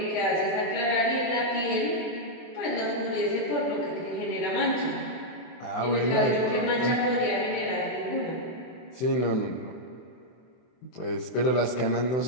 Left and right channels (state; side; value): late; right; 23 ms